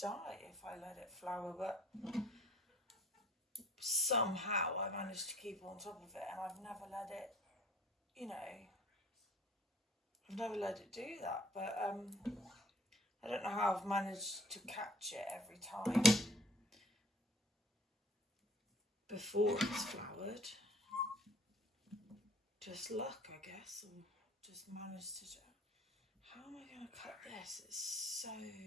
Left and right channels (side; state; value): both; normal; correlation 0.52